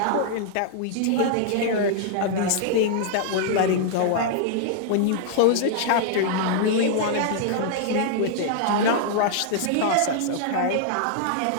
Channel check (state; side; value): different; both; correlation -0.01